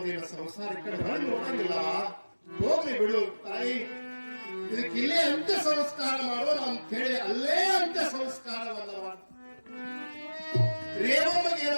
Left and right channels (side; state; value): both; inverted; correlation -1.00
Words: ಸಂಸಾರ ಈ ಕಡೆ ಹೊಳಿ ನೋಡಂಗಿಲ್ಲ, ಹೋಗ್ಲಿ ಬಿಡು ತಾಯಿ, ಇದಕ್ಕೆ ಇಲ್ಲೇ ಅಂತ್ಯ ಸಂಸ್ಕಾರ ಮಾಡೋಣ ಅಂತ ಹೇಳಿ ಅಲ್ಲೇ ಅಂತ್ಯ ಸಂಸ್ಕಾರವಲ್ಲ. ರೇವಮ್ಮಗೆ